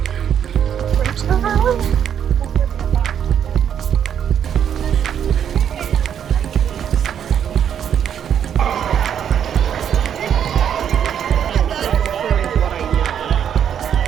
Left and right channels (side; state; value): left; quieter; 8.8 dB